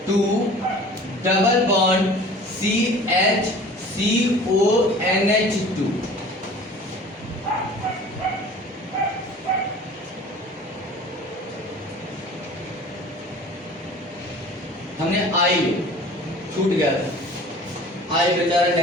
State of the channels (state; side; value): normal; both; correlation 0.44